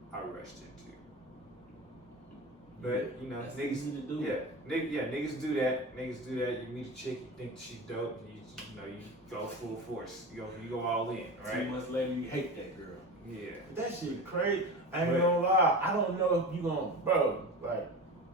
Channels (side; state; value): both; normal; correlation 0.29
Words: I rushed into. But you know, That's niggas, easy to do. niggas do that. Niggas do that. You meet a chick, you think she dope, you know, you go full force. You go all in, 2 right? months later, you hate that girl. Yeah. That shit crazy. I ain't But- gonna lie. I don't know if you gonna, bro. Like